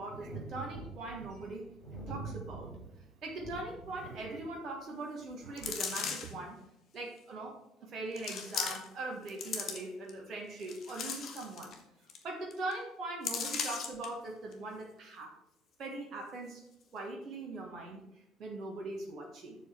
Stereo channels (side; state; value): both; normal; correlation 0.55